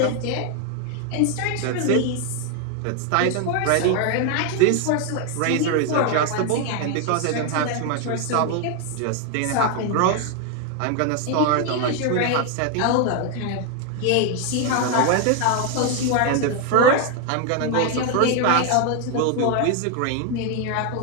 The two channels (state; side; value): different; both; correlation 0.01